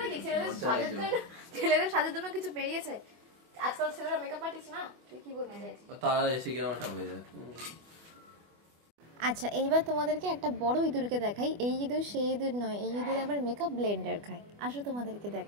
কি ছেলেদের সাজের জন্য কিছু বেরিয়েছে আজকাল, ছেলেরা মেকআপ আর্টিস্ট না, তুই কি বলতে চাইছিস? তারা এসে কি আমারটা হয়ে যায়। আচ্ছা, এইবার তোমাদেরকে একটা বড় ইঁদুরকে দেখাই। এই ইঁদুর সেই ইঁদুর নয়, এই ইঁদুর আবার মেকআপ ব্লেন্ডার খায়। আসো তোমাদেরকে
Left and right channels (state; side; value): late; left; 24 ms